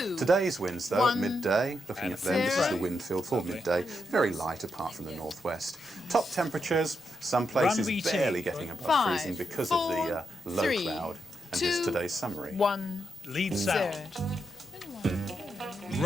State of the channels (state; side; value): normal; both; correlation 0.83